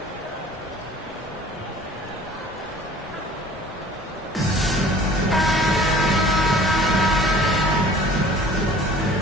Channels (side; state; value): both; normal; correlation 0.48